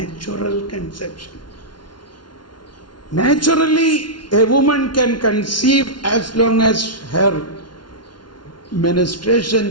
conception. Naturally, a woman can conceive as long as her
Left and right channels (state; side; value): late; right; 0.71 ms